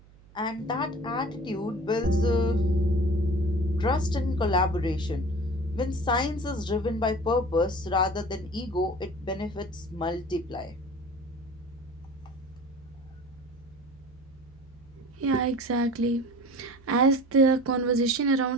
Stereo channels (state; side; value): noise; right; hum, 25 dB below the sound